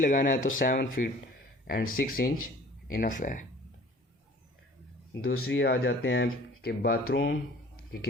है तो 7 फीट एंड 6 इंच इनफ है। दूसरी आ जाते हैं कि बाथरूम की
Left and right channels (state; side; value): normal; both; correlation 0.49